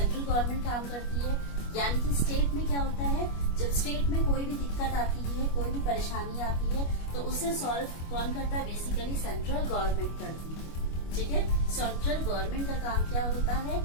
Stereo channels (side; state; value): right; late; 25 ms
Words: काम करती है। यानी कि स्टेट में क्या होता है, जब स्टेट में कोई भी दिक्कत आती है, कोई भी परेशानी आती है, तो उसे सॉल्व कौन करता है, बेसिकली सेंट्रल गवर्नमेंट करती है, ठीक है। सेंट्रल गवर्नमेंट का काम क्या होता है,